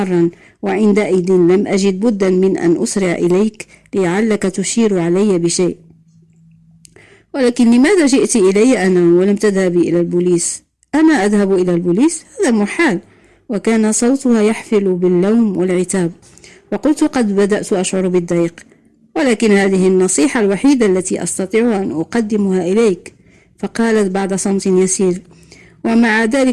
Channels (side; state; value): both; identical; correlation 1.00